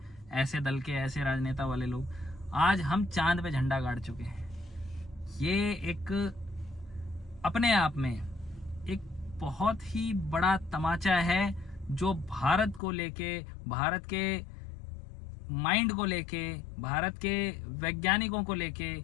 ऐसे दल के ऐसे राजनेता वाले लोग, आज हम चांद पे झंडा गाड़ चुके हैं। ये एक अपने आप में एक बहुत ही बड़ा तमाचा है जो भारत को लेके, भारत के माइंड को लेके, भारत के वैज्ञानिकों को लेके,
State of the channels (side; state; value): right; drops out; at 12.8 s